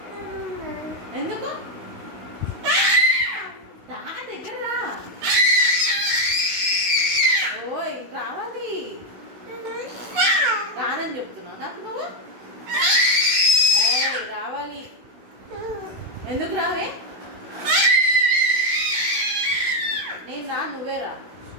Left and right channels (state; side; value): late; left; 16 ms